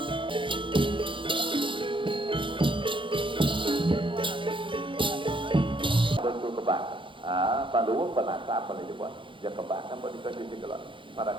Panduwa penata apa nih coba? Ya kebahkan pada dikasih kalau para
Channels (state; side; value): late; left; 0.25 ms